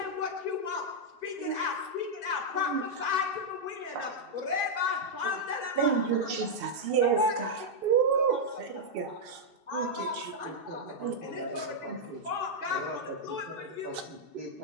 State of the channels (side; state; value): left; late; 2.7 ms